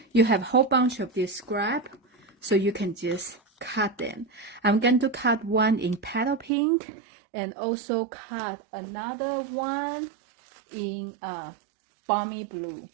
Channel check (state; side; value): drops out; left; at 6.5 s